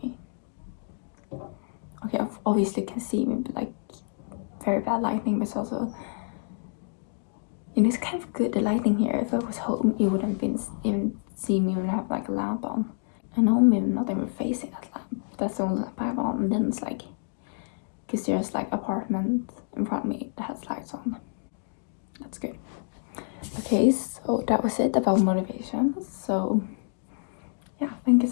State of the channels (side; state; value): right; silent; digital silence